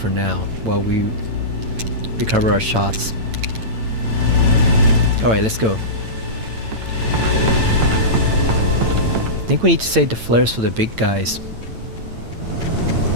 now while we recover our shots. Alright, let's go. I think we need to save the flares for the big guys.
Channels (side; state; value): left; late; 8.9 ms